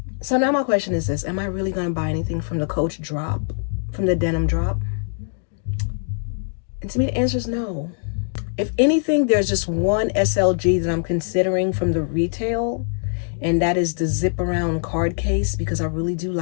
So now my question is this: am I really gonna buy anything from the Coach drop, from the denim drop? And to me, the answer is no. If anything, there's just one SLG that I'm considering from the retail, and that is the zip around card case, because I really do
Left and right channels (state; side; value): silent; right; digital silence